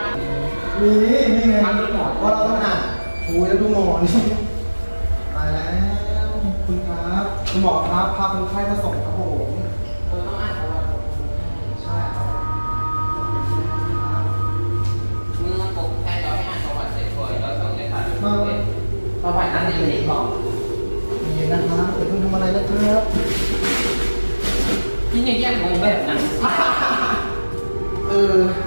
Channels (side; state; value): both; inverted; correlation -1.00